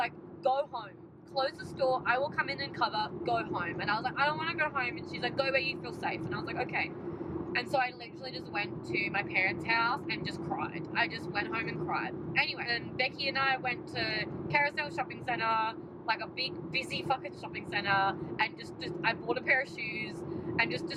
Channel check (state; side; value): identical; both; correlation 1.00